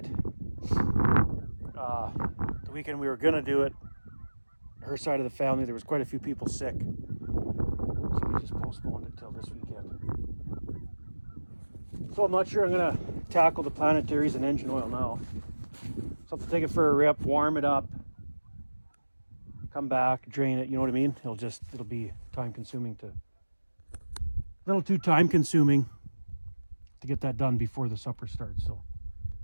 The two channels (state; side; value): inverted; both; correlation -1.00